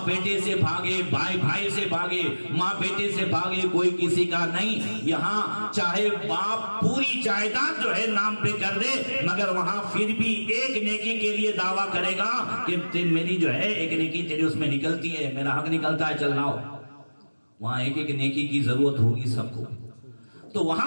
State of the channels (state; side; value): inverted; both; correlation -1.00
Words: بیٹے سے بھاگے، بھائی بھائی سے بھاگے، ماں بیٹے سے بھاگے، کوئی کسی کا نہیں۔ یہاں چاہے باپ پوری جائیداد جو ہے نام پہ کر دے، مگر وہاں پھر بھی ایک نیکی کے لیے دعویٰ کرے گا کہ میری جو ہے ایک نیکی تیری اس میں نکلتی ہے، میرا حق نکلتا ہے، چل لاؤ۔ وہاں ایک ایک نیکی کی ضرورت ہوگی سب کو۔ تو